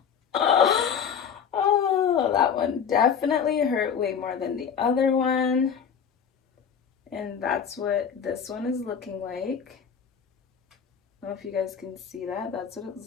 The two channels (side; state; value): right; quieter; 7.3 dB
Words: Oh, that one definitely hurt way more than the other one. And that's what this one is looking like. I don't know if you guys can see that. That's what